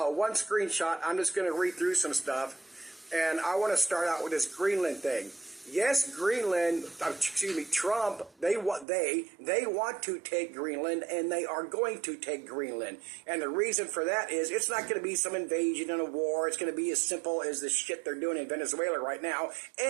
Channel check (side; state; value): left; drops out; at 8.8 s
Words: one screenshot. I'm just going to read through some stuff, and I want to start out with this Greenland thing. Yes, Greenland, Trump, they want to take Greenland, and they are going to take Greenland. And the reason for that is it's not going to be some invasion and a war. It's going to be as simple as the shit they're doing in Venezuela right now.